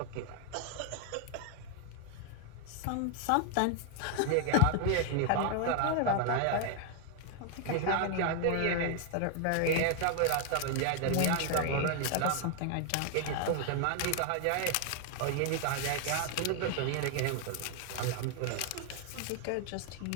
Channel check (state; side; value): different; both; correlation 0.00